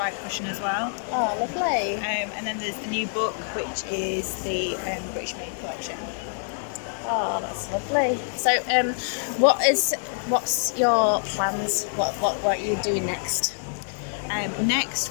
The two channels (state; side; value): silent; right; digital silence